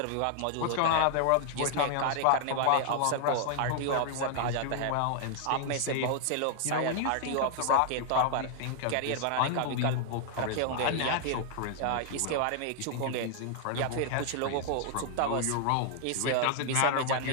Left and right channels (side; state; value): both; different; correlation 0.00